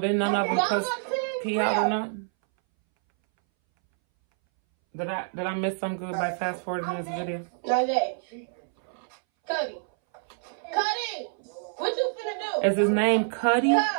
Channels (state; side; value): silent; left; 60 dB below the other